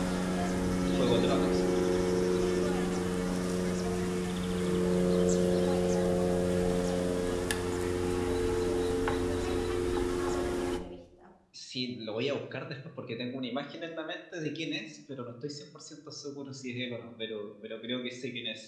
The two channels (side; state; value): both; identical; correlation 1.00